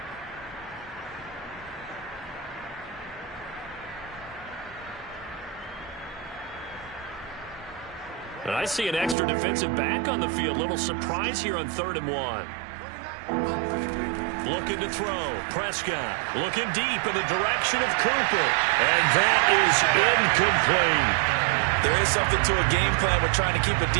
And I see an extra defensive back on the field. Little surprise here on 3rd and 1. Looking to throw. Prescott looking deep in the direction of Cooper. And that is incomplete. There is something to a game plan with trying to keep a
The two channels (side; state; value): left; drops out; at 9.2 s